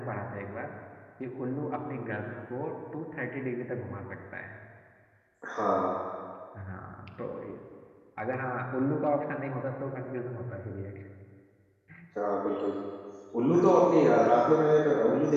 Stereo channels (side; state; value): both; identical; correlation 1.00